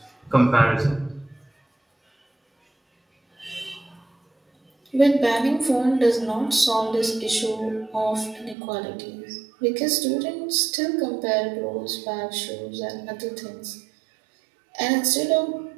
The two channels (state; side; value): drops out; left; at 8.6 s